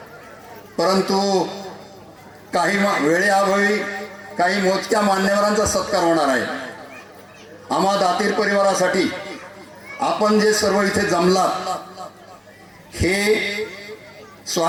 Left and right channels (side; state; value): both; identical; correlation 1.00